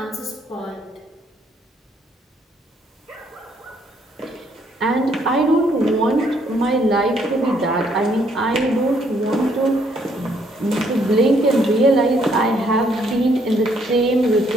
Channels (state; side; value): normal; both; correlation 0.68